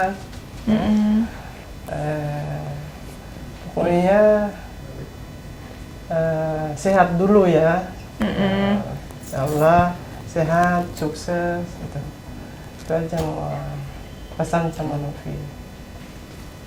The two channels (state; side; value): identical; both; correlation 1.00